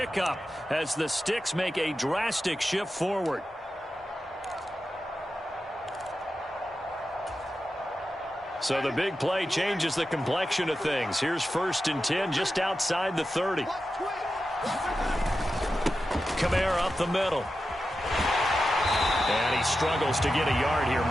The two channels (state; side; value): normal; both; correlation 0.91